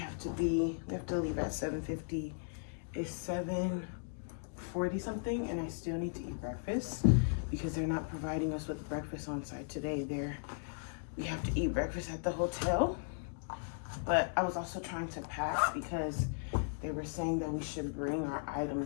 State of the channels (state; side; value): silent; right; digital silence